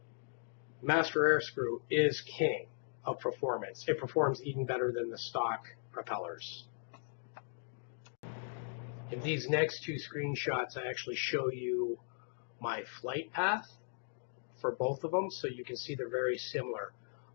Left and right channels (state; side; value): silent; right; digital silence